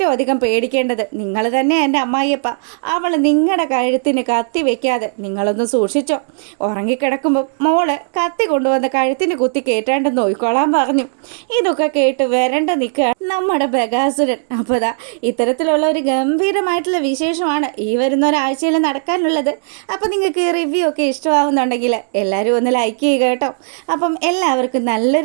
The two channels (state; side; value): silent; left; 68 dB below the other